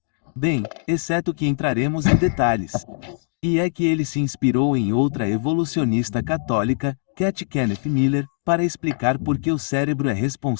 Bem, exceto que entraremos em detalhes. E é que ele se inspirou em outra evolucionista católica, Cat Kenneth Miller, para explicar por que o cérebro é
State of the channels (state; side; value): silent; right; digital silence